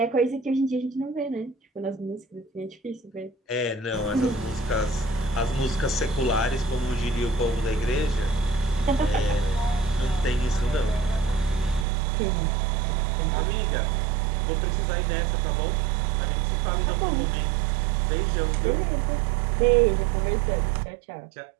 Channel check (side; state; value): left; drops out; at 11.9 s